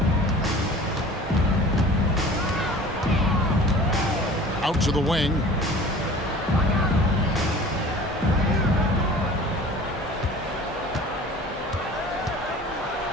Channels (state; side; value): normal; both; correlation 0.43